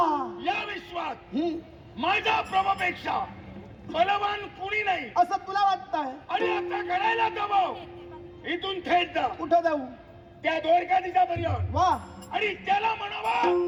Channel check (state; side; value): identical; both; correlation 1.00